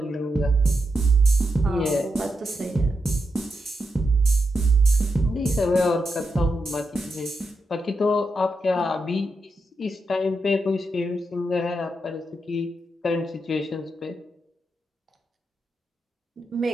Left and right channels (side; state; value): both; normal; correlation 0.85